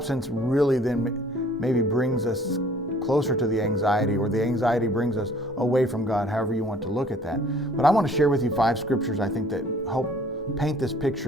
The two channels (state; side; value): normal; both; correlation 0.55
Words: really then maybe brings us closer to the anxiety, or the anxiety brings us away from God, however you want to look at that. But I want to share with you 5 scriptures I think that help paint this